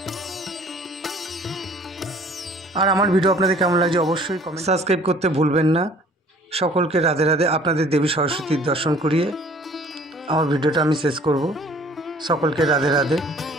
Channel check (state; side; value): normal; both; correlation 0.53